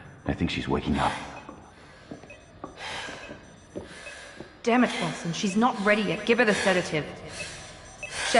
I think she's waking up. Damn it, Wilson. She's not ready yet. Give her the sedative.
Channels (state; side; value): identical; both; correlation 1.00